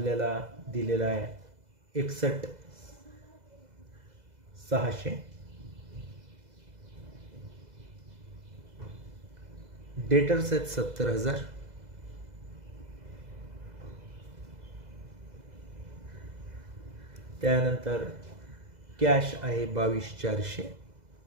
दिलेला आहे 61,600. डेटर्स आहेत 70,000. त्यानंतर कॅश आहे 22,400.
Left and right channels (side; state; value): left; late; 2.0 ms